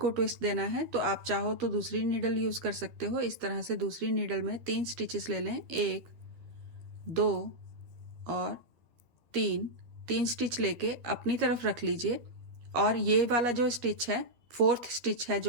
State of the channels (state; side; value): late; left; 12 ms